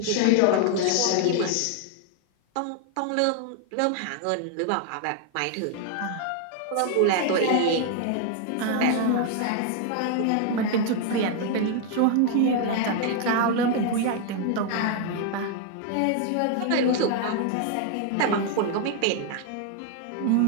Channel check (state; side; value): different; both; correlation 0.00